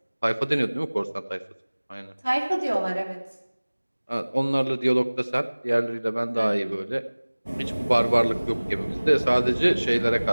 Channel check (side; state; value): both; inverted; correlation -1.00